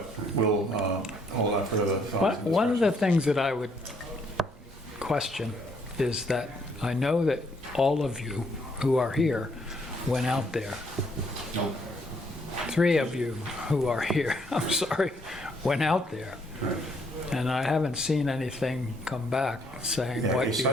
we'll hold on further thoughts. and One of the discussions. things that I would question is that I know that all of you who are here went out there. Nope. 3 of you who are here, I'm sorry, went out there. Right. And I haven't seen anything come back saying Yeah, a what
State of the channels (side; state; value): both; normal; correlation 0.69